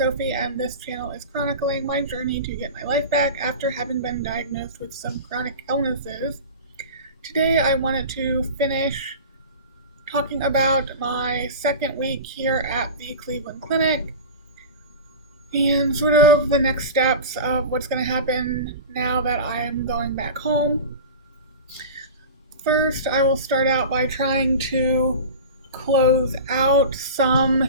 and this channel is chronicling my journey to get my life back after having been diagnosed with some chronic illnesses. Today I wanted to finish talking about my second week here at the Cleveland Clinic and sort of the next steps of what's going to happen now that I am going back home. First, I will start out by trying to close out some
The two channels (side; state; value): both; inverted; correlation -0.31